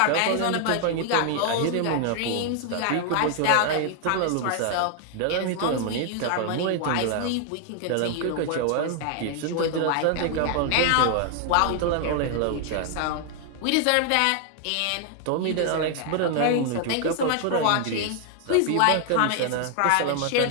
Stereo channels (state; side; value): different; both; correlation 0.00